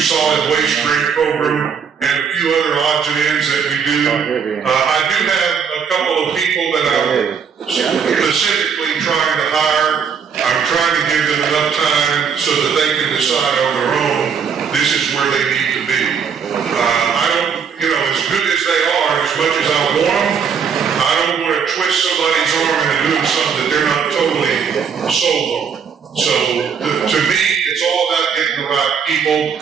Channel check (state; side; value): quieter; left; 6.7 dB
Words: solid waste grant program, and a few other odds and ends that we do. I do have a couple of people that I'm specifically trying to hire. I'm trying to give them enough time so that they can decide on their own, this is where they need to be. I don't, as good as they are, as much as I want them, I don't want to twist somebody's arm into doing something that they're not totally sold on. So, to me, it's all about getting the right people,